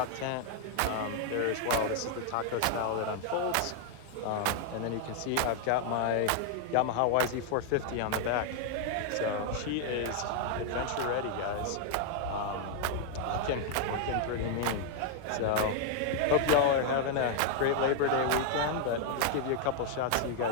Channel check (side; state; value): both; different; correlation 0.00